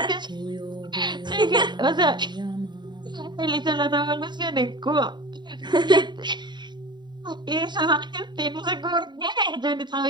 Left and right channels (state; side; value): late; left; 0.21 ms